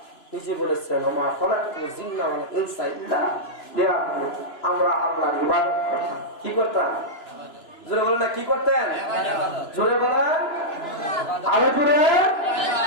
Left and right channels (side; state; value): right; late; 2.9 ms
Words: নিজে বলেছেন, ওমা খালাকতুল জিন্না ওয়াল ইনসা ইল্লা লিয়াবুদুন। আমরা আল্লাহর ইবাদত করতাম। কি করতাম? জোরে বলেন না, কি করতেন? জোরে বলেন, আরো জোরে।